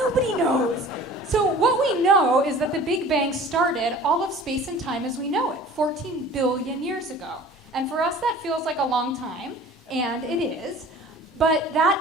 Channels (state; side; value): normal; both; correlation 0.45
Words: knows." So what we know is that the Big Bang started all of space and time as we know it, 14 billion years ago. And for us, that feels like a long time, and it is. But